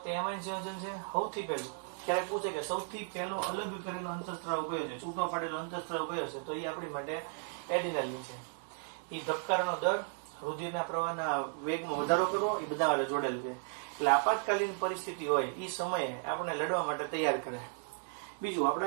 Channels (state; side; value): silent; left; 54 dB below the other